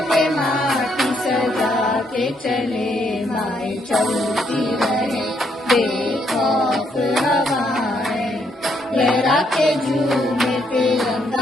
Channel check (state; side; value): normal; both; correlation 0.74